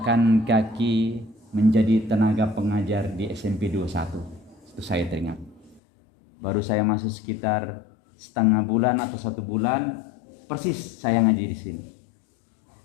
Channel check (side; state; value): right; drops out; at 5.8 s